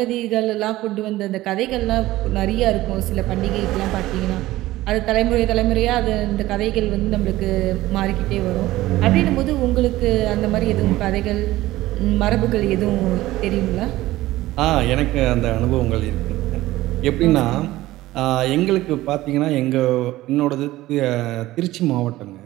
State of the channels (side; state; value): left; quieter; 16.7 dB